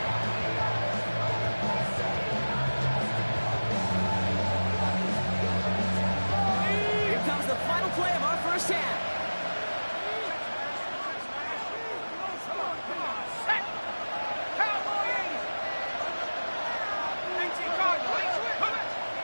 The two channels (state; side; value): inverted; both; correlation -1.00